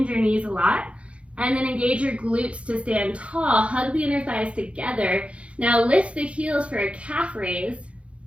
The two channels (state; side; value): late; left; 0.061 ms